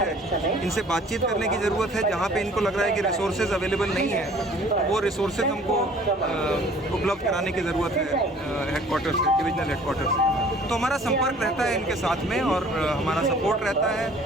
इनसे बातचीत करने की ज़रूरत है। जहाँ पे इनको लग रहा है कि रिसोर्सेज अवेलेबल नहीं है, वो रिसोर्सेज हमको उपलब्ध कराने की ज़रूरत है हेडक्वार्टर से, डिविजनल हेडक्वार्टर से। तो हमारा संपर्क रहता है इनके साथ में और हमारा सपोर्ट रहता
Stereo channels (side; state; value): both; normal; correlation 0.52